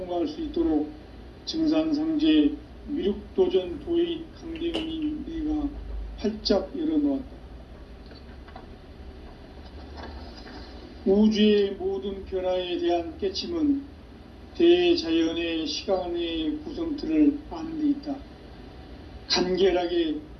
수 있도록 증산상제 미륵도전 도의 강대훈이 우리가 활짝 열어놓았다. 우주의 모든 변화에 대한 깨침은 대자연의 시간의 구성틀을 아는 데 있다. 간결하게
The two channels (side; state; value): both; identical; correlation 1.00